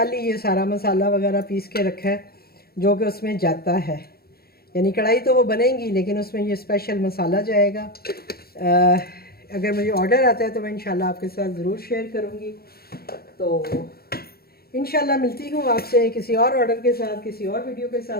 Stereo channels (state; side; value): late; right; 0.45 ms